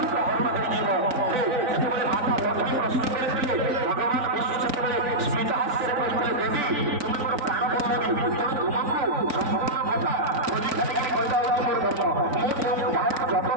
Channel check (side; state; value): left; late; 3.9 ms